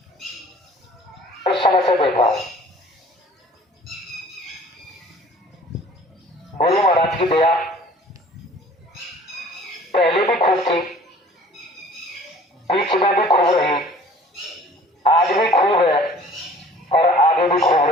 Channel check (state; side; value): normal; both; correlation 0.50